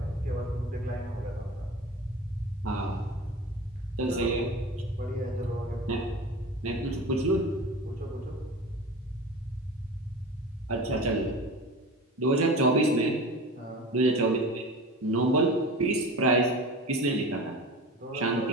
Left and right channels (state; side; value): normal; both; correlation 0.34